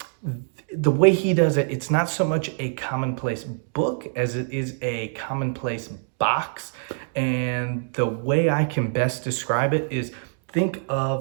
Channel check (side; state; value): left; silent; digital silence